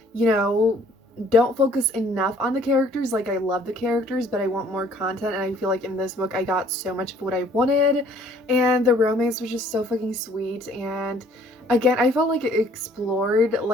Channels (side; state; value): both; normal; correlation 0.58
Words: you know, don't focus enough on the characters. Like, I love the characters, but I want more content, and I feel like in this book I got so much of what I wanted, and the romance was just so fucking sweet. And again, I felt like it explored